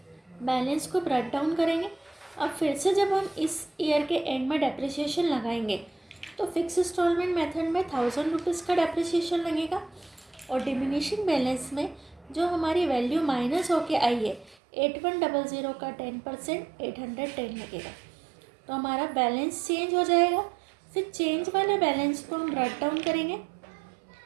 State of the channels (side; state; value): left; drops out; at 14.6 s